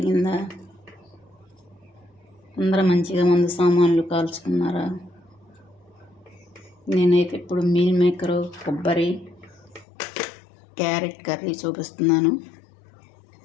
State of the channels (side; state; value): right; drops out; at 9.9 s